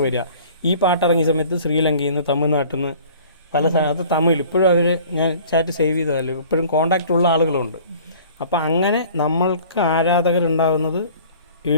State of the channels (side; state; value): both; inverted; correlation -0.49